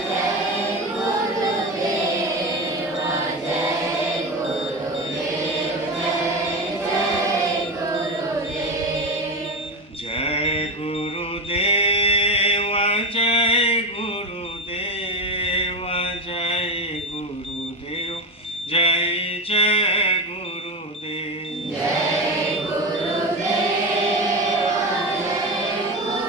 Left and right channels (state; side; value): normal; both; correlation 0.20